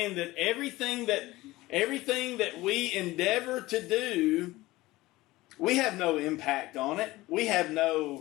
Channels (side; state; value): right; quieter; 18.7 dB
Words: that everything that we endeavor to do, we have no impact on it. We have